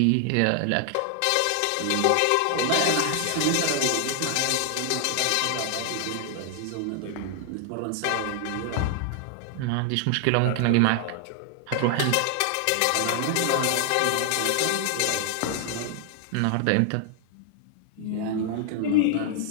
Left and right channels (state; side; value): different; both; correlation 0.00